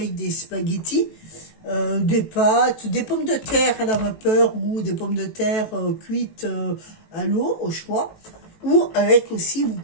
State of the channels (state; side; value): late; right; 18 ms